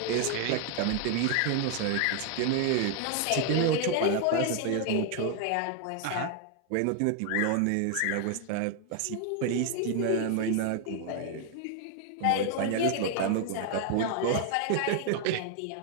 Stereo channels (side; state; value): both; different; correlation 0.00